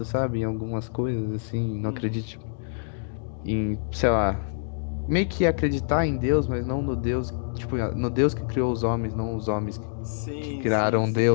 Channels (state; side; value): silent; right; digital silence